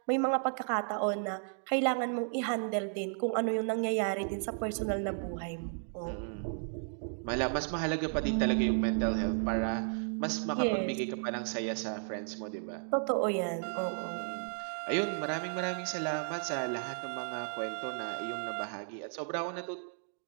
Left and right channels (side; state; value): left; silent; 55 dB below the other